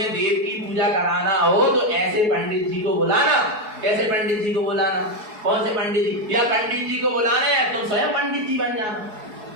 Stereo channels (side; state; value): left; late; 4.7 ms